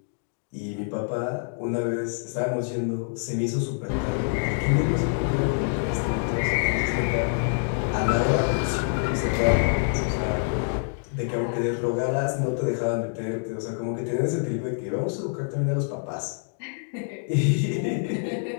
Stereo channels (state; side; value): silent; right; digital silence